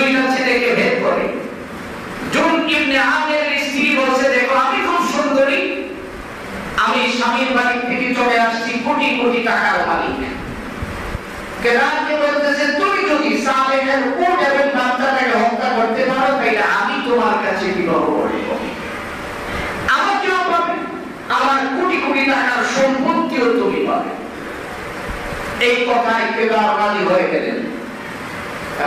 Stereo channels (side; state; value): both; identical; correlation 1.00